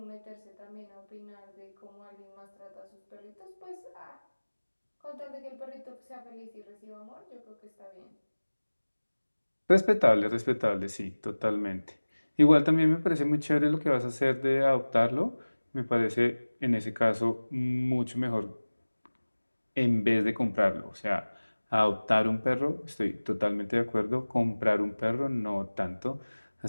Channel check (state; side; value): inverted; both; correlation -1.00